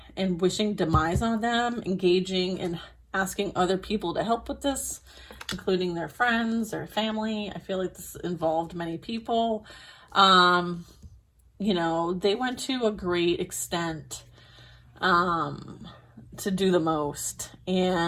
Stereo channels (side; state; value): both; identical; correlation 1.00